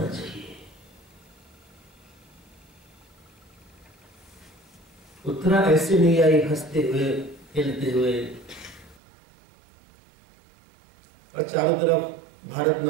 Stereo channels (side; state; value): left; drops out; at 9.0 s